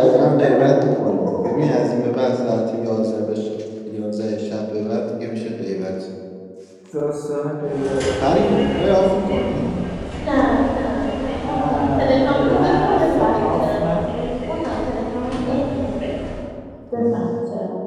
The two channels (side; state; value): both; identical; correlation 1.00